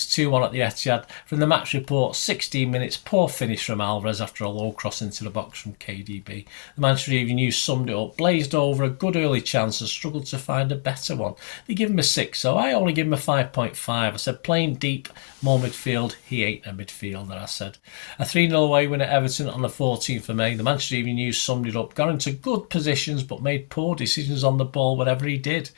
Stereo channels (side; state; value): right; silent; digital silence